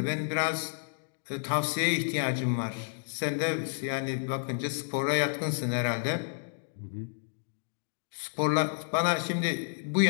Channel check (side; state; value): right; silent; digital silence